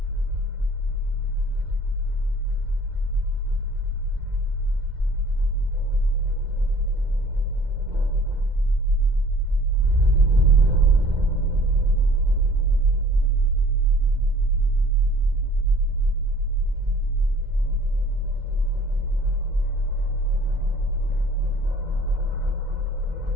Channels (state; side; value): late; left; 2.0 ms